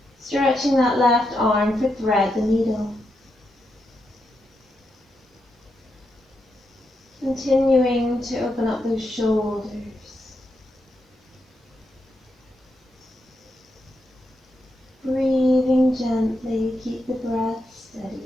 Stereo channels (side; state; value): both; normal; correlation 0.83